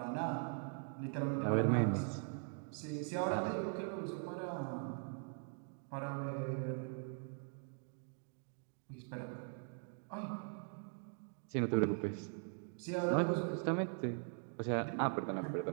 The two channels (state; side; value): silent; left; 50 dB below the other